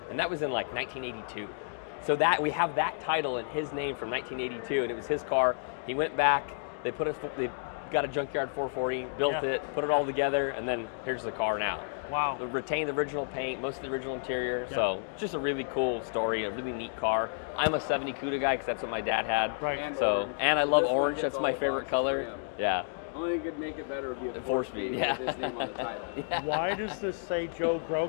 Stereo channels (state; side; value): silent; right; digital silence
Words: And that was in like 1982. So that we have that title in his name from 1982, and it was his car. He went back, they got a junkyard 440, built Yeah. it, put it all together, and then here's the car now. Wow. It retained the original paint, most of the original interior. Yeah. So just a really cool story, a really neat car. I'm a 70 CUDA guy because that's what my dad had. Right. And So, orange. and I So love this one orange. hits That's all my the favorite boxes for color. him. Yeah. Only thing could make it better would be a 4-speed yeah. with his name on the title. Why does this say Joe